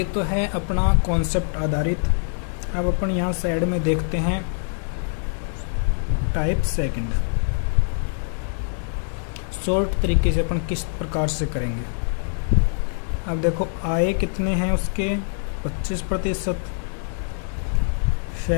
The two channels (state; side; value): silent; right; 63 dB below the other